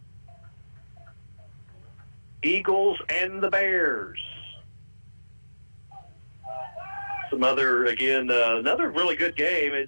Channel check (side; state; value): both; inverted; correlation -1.00